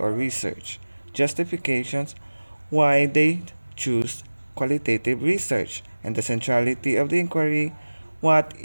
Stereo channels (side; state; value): both; inverted; correlation -1.00